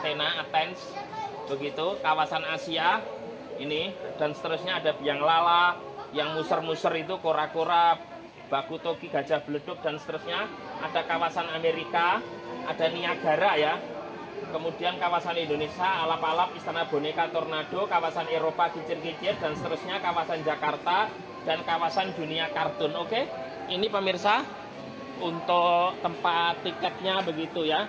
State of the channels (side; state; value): both; identical; correlation 1.00